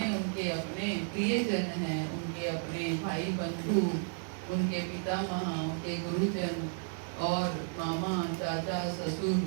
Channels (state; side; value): silent; left; 56 dB below the other